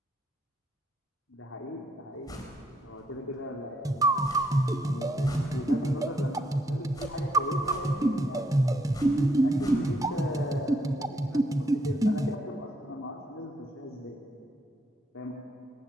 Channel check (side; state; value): both; normal; correlation 0.74